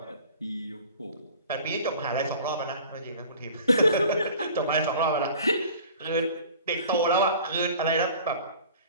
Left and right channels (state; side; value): inverted; both; correlation -0.45